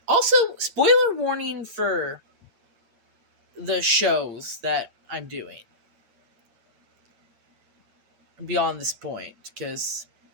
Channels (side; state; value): left; late; 8.6 ms